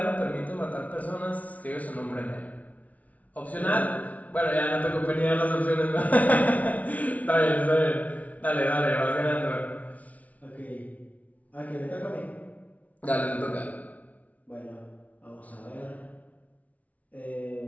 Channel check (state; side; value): late; right; 0.069 ms